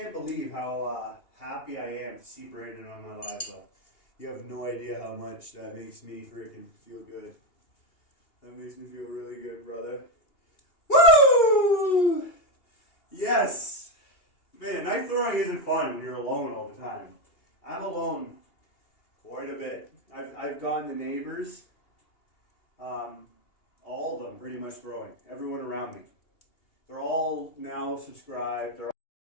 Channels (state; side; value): late; right; 2.8 ms